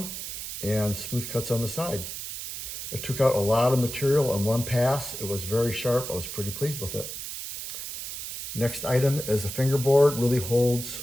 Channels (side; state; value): right; noise; hiss, 7 dB below the sound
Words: and smooth cuts on the side. It took out a lot of material in one pass. It was very sharp. I was pretty pleased with it. Next item is a fingerboard. Really holds